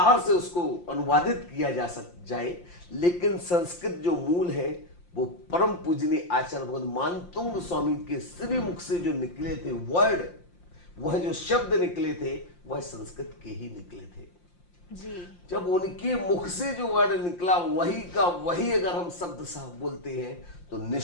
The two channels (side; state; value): right; late; 5.7 ms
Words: से उसको अनुवादित किया जाए, लेकिन संस्कृत जो मूल है वो परम पूजनीय आचार्य भगवत मानतुंग स्वामी के श्री मुख से जो निकले थे वर्ड, वह जो शब्द निकले थे वह संस्कृत के ही निकले थे जी। जब उनके मुख से जो वर्ड निकला वही का वही अगर हम शब्द साहब बोलते हैं तो